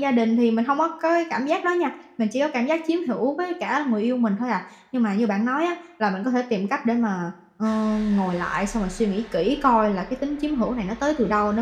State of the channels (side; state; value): both; identical; correlation 1.00